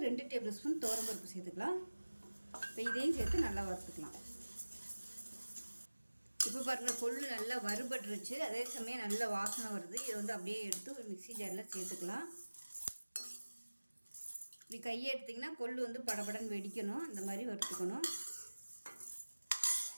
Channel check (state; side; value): inverted; both; correlation -1.00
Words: 2 டேபிள் ஸ்பூன் துவரம்பருப்பு சேர்த்துக்கலாம். இப்போ இதையும் சேர்த்து நல்லா வறுத்துக்கலாம். இப்போ பாருங்கள், கொள்ளு நல்லா வறுபட்டுருச்சு. அதே சமயம் நல்ல வாசனை வருது. இதை வந்து அப்படியே எடுத்து ஒரு மிக்ஸி ஜாரில் சேர்த்துக்கலாம். இப்படி கையை எடுத்திங்கன்னா கொள்ளு வந்து படபடன்னு வெடிக்கணும். அந்த மாதிரி வறுத்துக்கணும்.